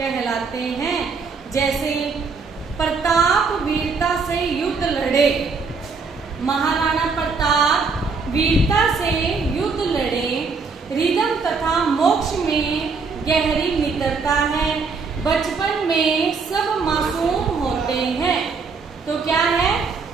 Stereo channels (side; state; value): left; quieter; 4.8 dB